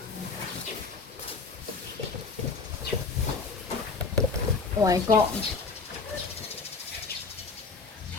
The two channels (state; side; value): quieter; right; 4.4 dB